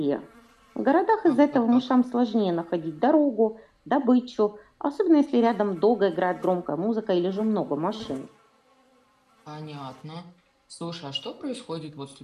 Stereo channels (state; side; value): identical; both; correlation 1.00